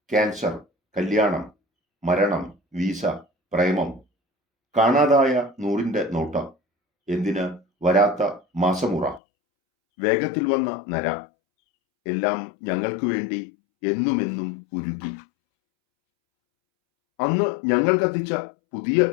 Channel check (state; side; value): drops out; right; at 9.2 s